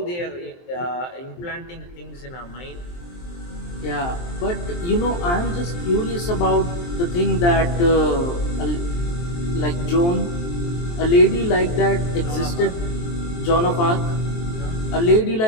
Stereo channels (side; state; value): right; late; 23 ms